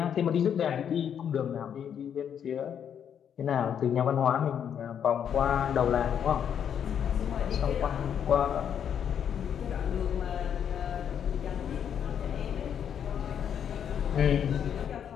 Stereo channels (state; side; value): quieter; right; 8.5 dB